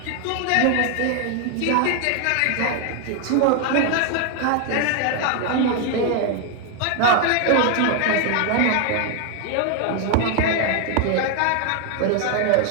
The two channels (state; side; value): different; both; correlation 0.01